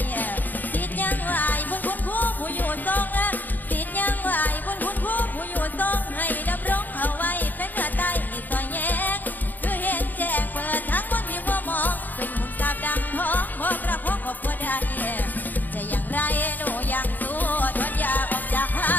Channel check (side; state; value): right; late; 0.086 ms